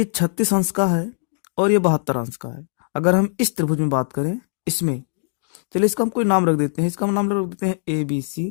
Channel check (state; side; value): silent; right; digital silence